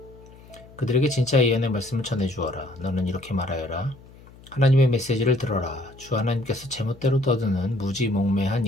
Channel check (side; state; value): left; noise; hum, 22 dB below the sound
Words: 그들에게 진짜 예언의 말씀을 전해주어라. 너는 이렇게 말하여라. 하나님의 메시지를 들어라. 주 하나님께서 제멋대로 떠드는 무지몽매한